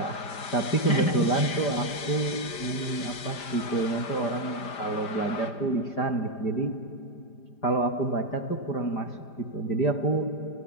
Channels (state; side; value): late; right; 5.0 ms